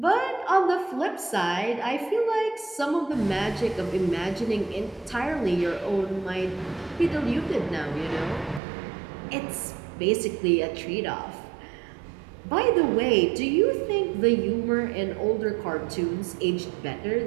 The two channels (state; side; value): drops out; left; at 8.6 s